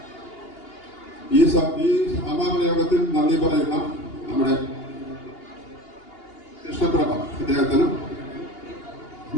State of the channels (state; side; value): late; right; 2.8 ms